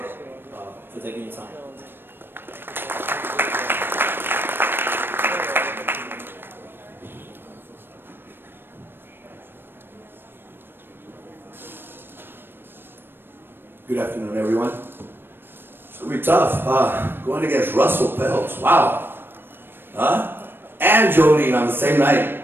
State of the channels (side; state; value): left; late; 0.099 ms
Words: for taking your time. Good afternoon, everyone. It's going to be tough. Going against Russell Pels. Wow. And Jolene on the same night.